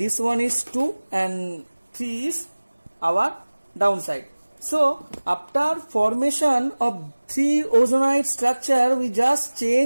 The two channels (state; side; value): inverted; both; correlation -1.00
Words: one is 2 and 3 is our downside. So after formation of 3 ozonide structure, we just